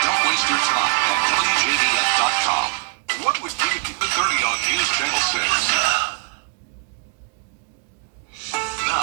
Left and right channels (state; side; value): quieter; left; 36.3 dB